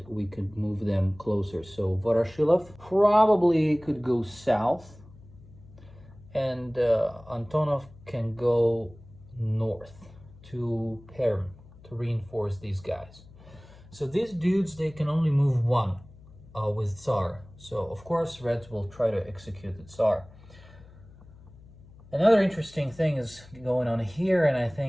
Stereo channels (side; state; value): left; noise; hum, 22 dB below the sound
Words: we could move them closer. So Voroshilov probably could go south, and Antonov can go north to Perm to reinforce these guys. So these dudes, they can only move one with Tsar. So of course Reds will try to execute the Tsar. Another interesting thing is going on here, and I